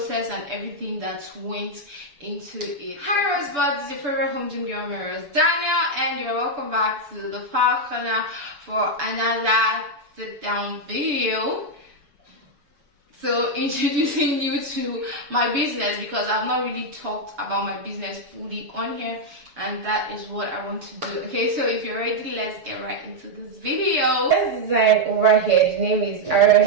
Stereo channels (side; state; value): left; late; 7.0 ms